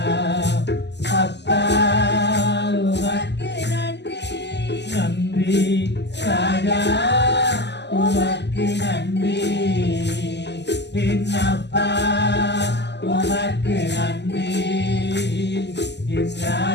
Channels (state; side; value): late; right; 0.50 ms